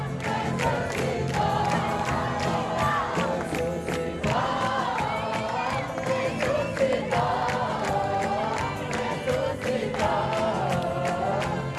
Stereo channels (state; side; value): identical; both; correlation 1.00